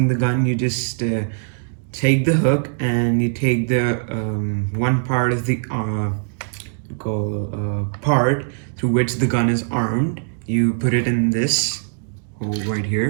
the gun, you just take the hook and you take the one part of the part through which the gun is armed. You put it in this hole right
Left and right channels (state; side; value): silent; left; digital silence